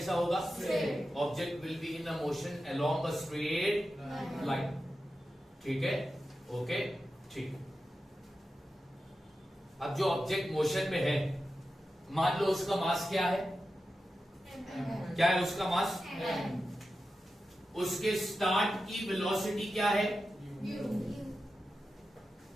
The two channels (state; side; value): normal; both; correlation 0.92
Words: होगा? Object will be in a motion along a straight line. ठीक है, ओके, ठीक। अब जो ऑब्जेक्ट मोशन में है, मान लो उसका मास क्या है? क्या है उसका मास? उसके स्टार्ट की वेलोसिटी क्या है?